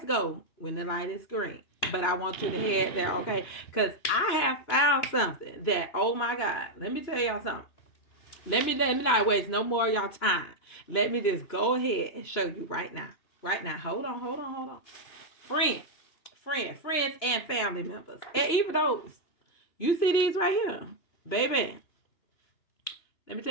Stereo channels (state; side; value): late; right; 3.0 ms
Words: go when the light is green. But I want you to head there, okay? Because I have found something that, oh my God, let me tell y'all something. Let me not waste no more of y'all time. Let me just go ahead and show you right now. Right now. Hold on. Friends, and family members. And even those. You see these right here. Baby. Let me